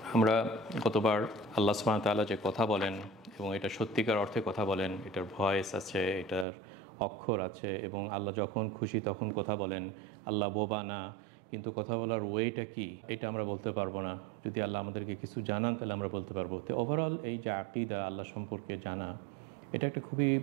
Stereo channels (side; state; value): left; drops out; at 6.5 s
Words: আমরা গতবার আল্লাহ সুবহানাহু ওয়া তাআলা যে কথা বলেন এবং এটা সত্যিকার অর্থে কথা বলেন, এটার ভয়েস আছে, এটার অক্ষর আছে এবং আল্লাহ যখন খুশি তখন কথা বলেন। আল্লাহ বোবা না, কিন্তু কথা বলার ওয়েটা কি এটা আমরা বলতে পারবো না। যদি আল্লাহ আমাদেরকে কিছু জানান তাহলে আমরা বলতে পারবো। তো ওভারঅল এই যে আকীদা, আল্লাহ সম্পর্কে জানা, এটা একটা খুবই